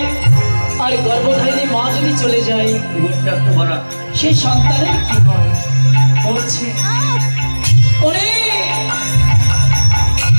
আর গর্ভধারিণী মা যদি চলে যায়, সেই সন্তানের কি হয়? বলছে ওরে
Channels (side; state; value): both; inverted; correlation -1.00